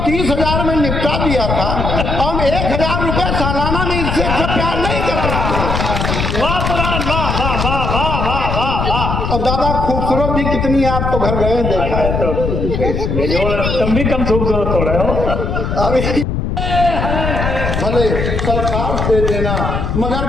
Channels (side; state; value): left; noise; rumble, 1 dB below the sound